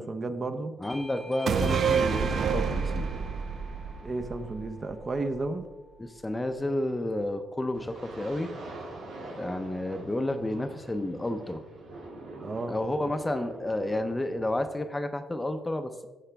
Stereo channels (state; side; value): normal; both; correlation 0.85